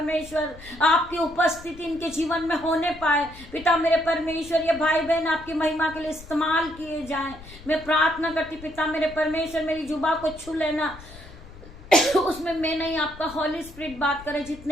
आपकी उपस्थिति इनके जीवन में होने पाए पिता मेरे परमेश्वर, ये भाई बहन आपकी महिमा के लिए इस्तेमाल किए जाएं। मैं प्रार्थना करती पिता मेरे परमेश्वर, मेरी जुबा को छू लेना, उसमें मैं नहीं आपका हॉली स्पिरिट बात करे।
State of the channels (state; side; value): noise; left; rumble, 18 dB below the sound